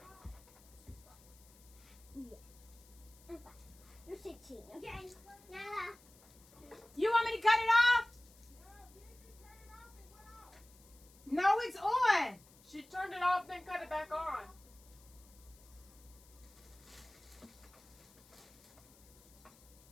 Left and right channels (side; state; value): left; noise; hiss, 25 dB below the sound